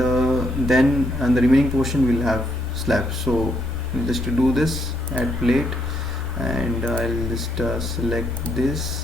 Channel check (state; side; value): normal; both; correlation 0.75